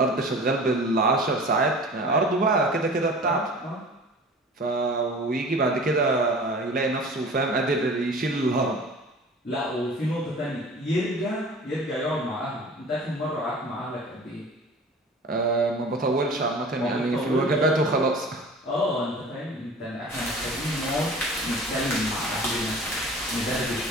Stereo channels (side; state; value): both; normal; correlation 0.41